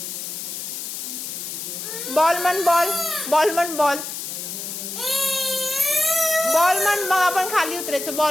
ball म्हण ball ball म्हण ball ball म्हण मग आपण खाली उतरायचं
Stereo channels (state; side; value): noise; left; hiss, 7 dB below the sound